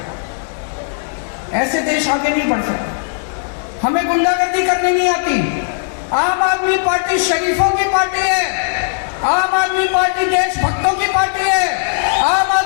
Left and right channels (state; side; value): silent; right; 68 dB below the other